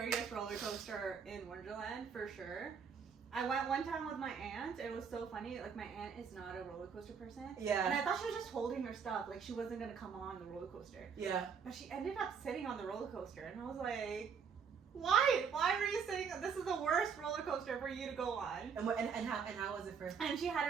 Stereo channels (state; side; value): quieter; left; 6.4 dB